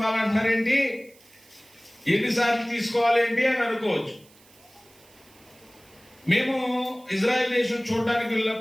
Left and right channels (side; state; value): right; noise; hiss, 27 dB below the sound